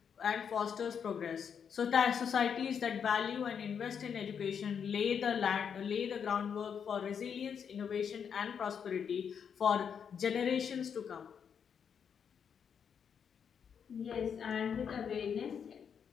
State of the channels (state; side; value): quieter; right; 7.3 dB